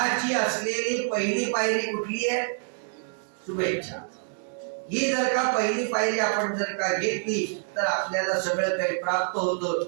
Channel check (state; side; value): silent; left; 60 dB below the other